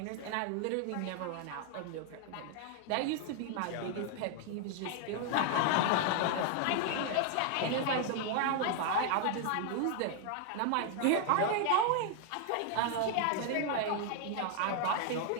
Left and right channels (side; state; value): both; different; correlation 0.00